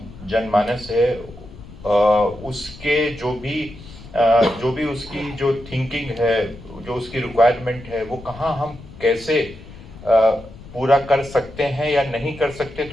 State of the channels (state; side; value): noise; left; rumble, 17 dB below the sound